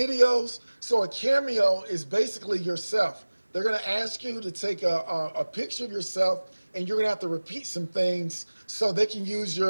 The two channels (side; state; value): both; inverted; correlation -1.00